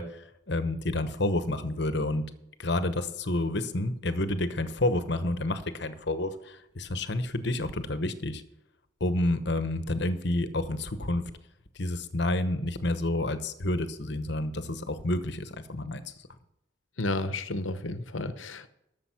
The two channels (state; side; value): normal; both; correlation 0.53